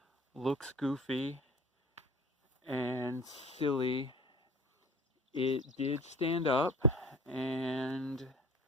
looks goofy and silly, it did stand up, and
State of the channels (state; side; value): normal; both; correlation 0.43